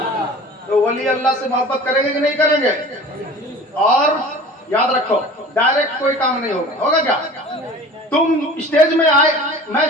तो वली अल्लाह से मोहब्बत करेंगे कि नहीं करेंगे? और याद रखो, डायरेक्ट कोई काम नहीं होगा। होगा क्या? तुम स्टेज में आए, मैं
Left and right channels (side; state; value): both; normal; correlation 0.41